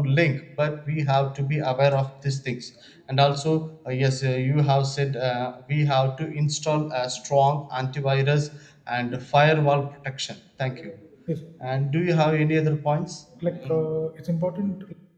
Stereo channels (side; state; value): both; identical; correlation 1.00